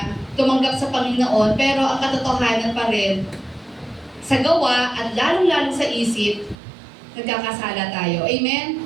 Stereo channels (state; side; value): drops out; left; at 6.6 s